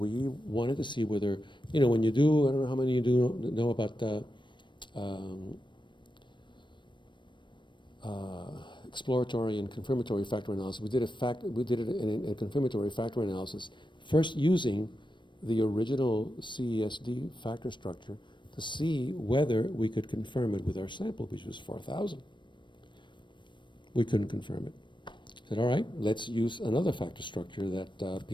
wanted to see whether, when you do, I don't know how many you do know about exploratory and confirmatory factor analysis. We did it in a confirmatory factor analysis, first using the original CESD factor structure to see whether we could confirm it with our sample, which was 4,000. We couldn't confirm it. Said, all right, let's use another factor structure that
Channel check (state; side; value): late; right; 0.22 ms